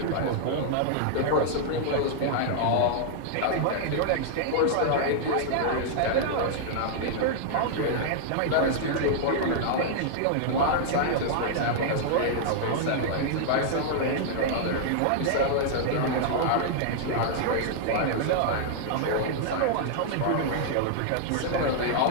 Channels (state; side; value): different; both; correlation -0.01